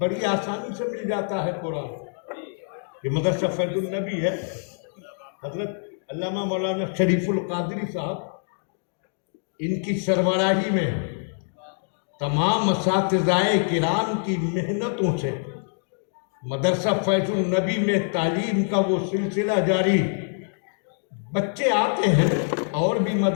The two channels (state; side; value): silent; right; digital silence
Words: آسانی سے مل جاتا ہے قرآن۔ یہ مدرسہ فیض النبی ہے، حضرت علامہ مولانا شریف القادری صاحب، ان کی سربراہی میں تمام اساتذہ کرام کی محنتوں سے مدرسہ فیض النبی میں تعلیم کا وہ سلسلہ جاری۔ بچے آتے ہیں، اور بھی